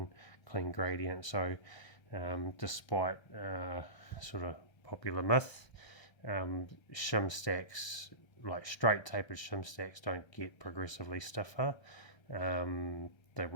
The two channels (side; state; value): right; late; 1.0 ms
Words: clean gradient. So despite sort of popular myth, shim stacks, like straight tapered shim stacks, don't get progressively stiffer. They